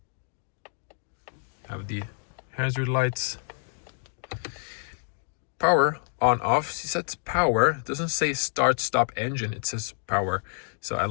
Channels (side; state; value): right; silent; 59 dB below the other